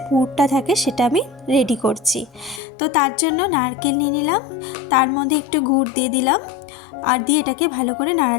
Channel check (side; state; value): right; drops out; at 2.6 s